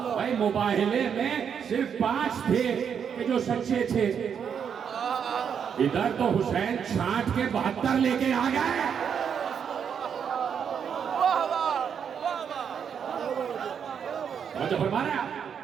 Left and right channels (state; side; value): quieter; left; 7.5 dB